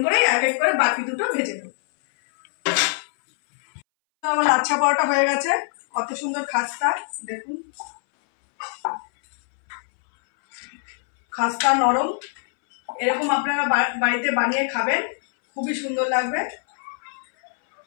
করে এক এক করে বাকি দুটো ভেজে নেব। আমার লাচ্ছা পরোটা হয়ে গেছে, কত সুন্দর খাস্তা। দেখুন খাস্তা নরম, এরকম আপনারা বাড়িতে বানিয়ে খাবেন, খুবই সুন্দর লাগবে।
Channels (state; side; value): silent; right; 63 dB below the other